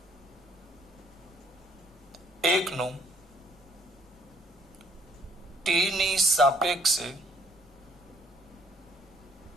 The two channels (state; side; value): noise; right; rumble, 28 dB below the sound